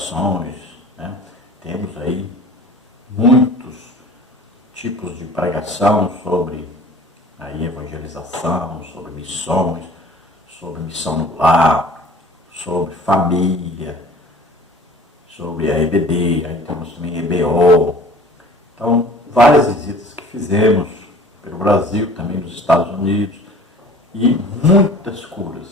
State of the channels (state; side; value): normal; both; correlation 0.46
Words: né? Temos aí muitos tipos de pregação sobre a evangelização, sobre missões, sobre missão no lar, sobre família, sobre a EBD, aí temos também EBO. Então, várias visitas que fizemos pelo Brasil, também nos Estados Unidos, e muitas